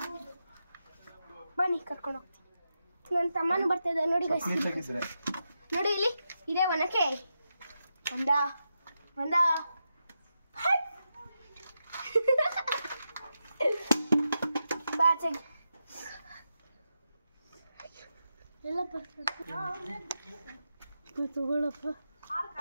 ಬನ್ನಿ ಕರ್ಕೊಂಡು ಹೋಗ್ತೀನಿ. ನನ್ನ ತಮ್ಮನೂ ಬರ್ತಾ ಇದ್ದ ನೋಡಿ ಗೈಸ್. ನೋಡಿ ಇಲ್ಲಿ ಇದೆ ಒನಕೆ. ಒಂದ ಬಾಚೆಗೆ ಎಲ್ಲಪ್ಪ ತಗೊಳ್ಳಪ್ಪ.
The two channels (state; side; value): inverted; both; correlation -0.87